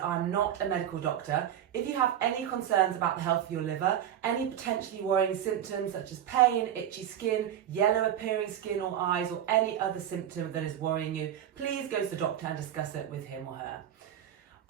I'm not a medical doctor. If you have any concerns about the health of your liver, any potentially worrying symptoms such as pain, itchy skin, yellow appearing skin or eyes, or any other symptom that is worrying you, please go to the doctor and discuss it with him or her.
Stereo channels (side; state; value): left; quieter; 10.5 dB